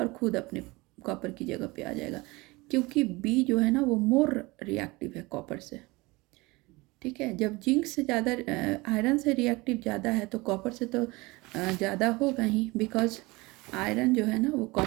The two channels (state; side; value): quieter; left; 23.1 dB